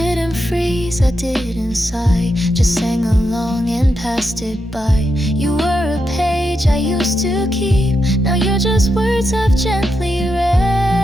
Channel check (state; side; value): normal; both; correlation 0.85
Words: freeze, I didn't sigh, just sang along and passed it by. You were a page I used to keep, now you're just words I've gently